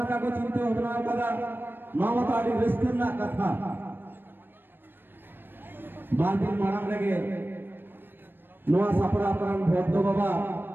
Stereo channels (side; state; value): left; late; 0.097 ms